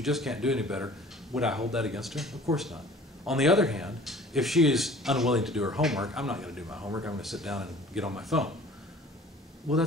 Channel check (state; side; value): normal; both; correlation 0.48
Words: just can't do any better, would I hold that against her? Of course not. On the other hand, if she is unwilling to do her homework, I'm not going to do my homework. I'm going to sit down and get on my phone. Well,